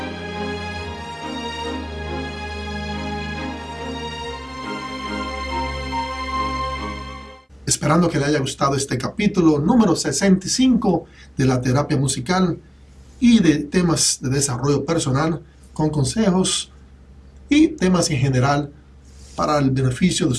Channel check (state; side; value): identical; both; correlation 1.00